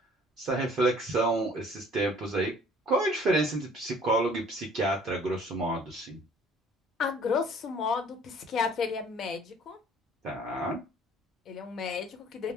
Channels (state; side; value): normal; both; correlation 0.54